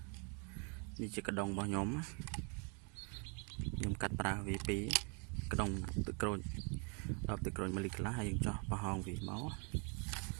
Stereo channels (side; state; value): left; quieter; 35.1 dB